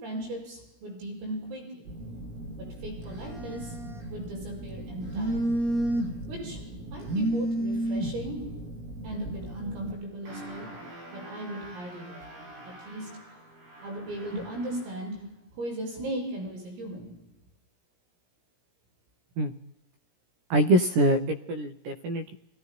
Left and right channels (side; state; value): left; late; 17 ms